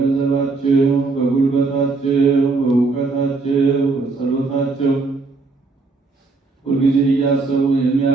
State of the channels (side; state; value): left; quieter; 3.9 dB